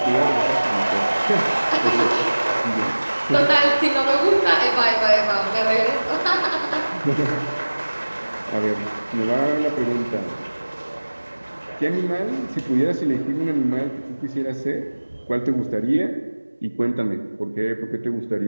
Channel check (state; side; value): inverted; both; correlation -1.00